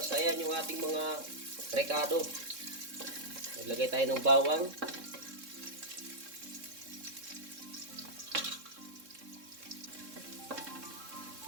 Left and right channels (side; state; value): left; late; 3.6 ms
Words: yan yung ating mga rekado. Naglagay tayo ng bawang.